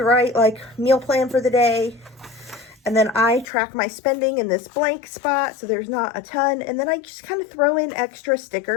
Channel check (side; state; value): right; drops out; at 3.5 s